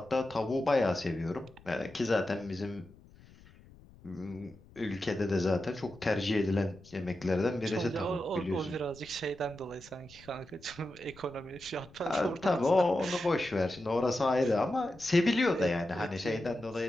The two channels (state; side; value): noise; left; rumble, 23 dB below the sound